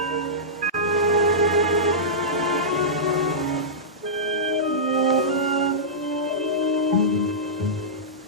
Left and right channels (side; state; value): both; normal; correlation -0.16